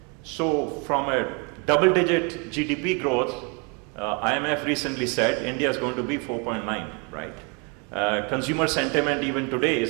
So from a double-digit GDP growth, IMF recently said India is going to be 4.9, right? Consumer sentiment even today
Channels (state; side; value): quieter; left; 33.8 dB